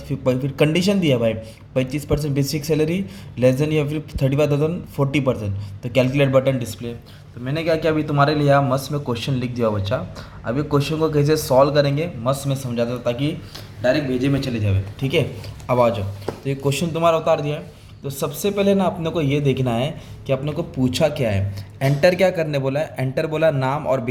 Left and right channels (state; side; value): identical; both; correlation 1.00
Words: फिर कंडीशन दिया भाई 25% बेसिक सैलरी लेस देन या फिर 35,000 40%, तो कैलकुलेट बटन डिस्प्ले। तो मैंने क्या किया, अभी तुम्हारे लिए यहाँ मस्त में क्वेश्चन लिख दिया बच्चा। अभी क्वेश्चन को कैसे सॉल्व करेंगे मस्त में समझाता हूँ, ताकि डायरेक्ट भेजे में चले जावे। ठीक है, अब आ जाओ। तो ये क्वेश्चन तुम्हारा उतार दिया है। तो सबसे पहले ना अपने को ये देखना है कि अपने को पूछा क्या है। एंटर क्या करने बोला है, एंटर बोला नाम और